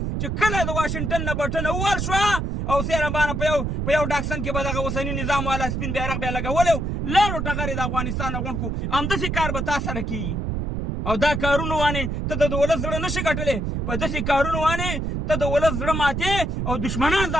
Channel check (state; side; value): noise; right; rumble, 2 dB below the sound